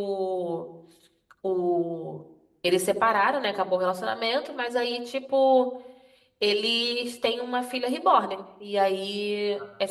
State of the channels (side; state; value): both; identical; correlation 1.00